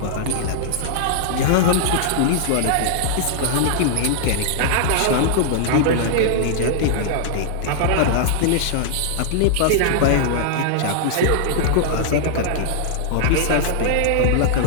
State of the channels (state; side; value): different; both; correlation -0.01